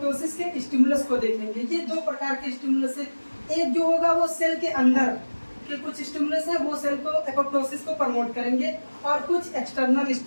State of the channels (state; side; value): inverted; both; correlation -1.00